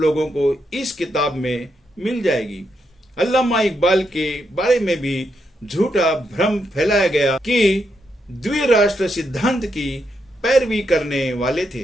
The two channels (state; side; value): normal; both; correlation 0.81